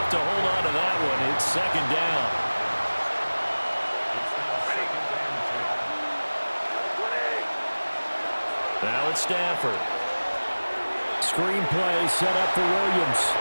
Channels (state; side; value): inverted; both; correlation -1.00